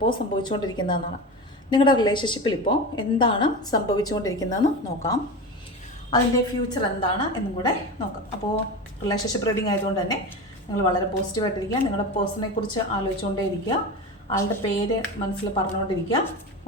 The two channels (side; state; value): both; normal; correlation 0.25